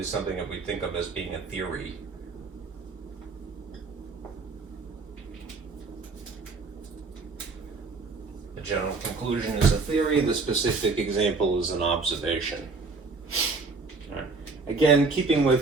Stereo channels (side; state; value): left; quieter; 4.1 dB